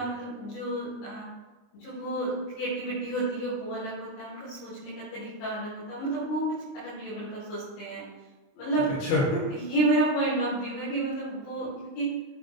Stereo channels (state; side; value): late; right; 29 ms